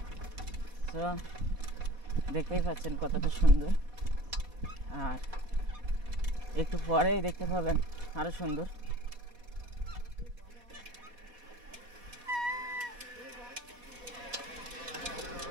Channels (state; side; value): late; left; 4.1 ms